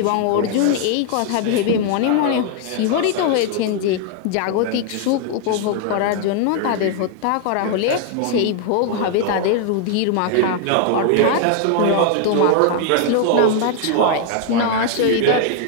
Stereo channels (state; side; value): different; both; correlation 0.00